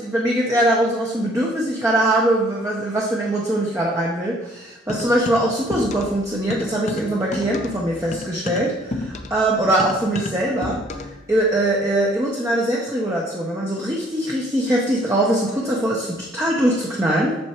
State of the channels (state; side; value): normal; both; correlation 0.60